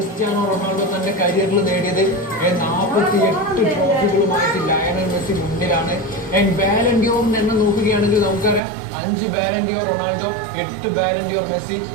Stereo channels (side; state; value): left; drops out; at 8.6 s